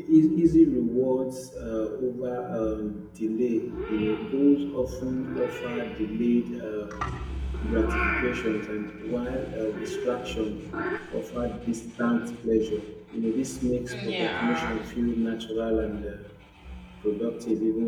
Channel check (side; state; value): both; identical; correlation 1.00